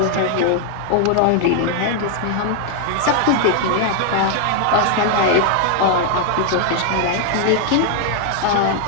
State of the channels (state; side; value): different; both; correlation 0.00